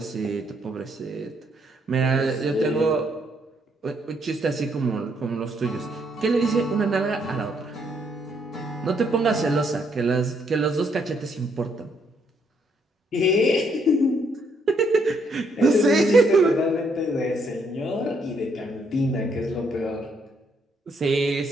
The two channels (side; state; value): both; normal; correlation 0.72